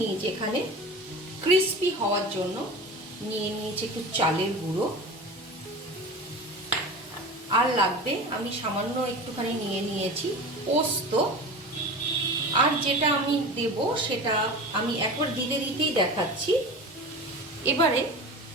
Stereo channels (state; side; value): normal; both; correlation 0.32